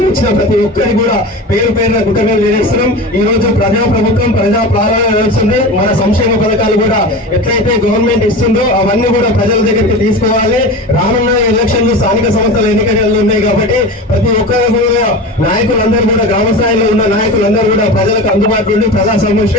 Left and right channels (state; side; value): normal; both; correlation 0.30